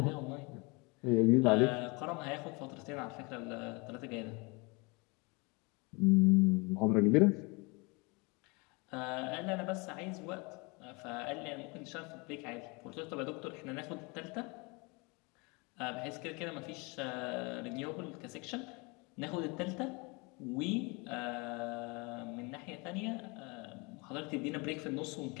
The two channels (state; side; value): quieter; right; 28.6 dB